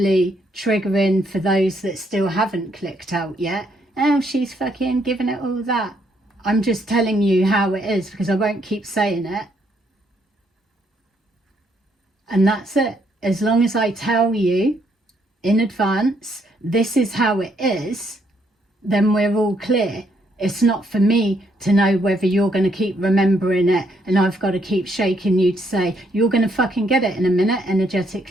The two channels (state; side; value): normal; both; correlation 0.72